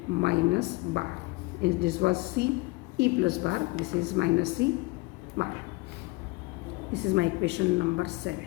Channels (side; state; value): right; quieter; 23.5 dB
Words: minus bar. If this was C, E plus bar, this is minus C bar. This is my equation number 7.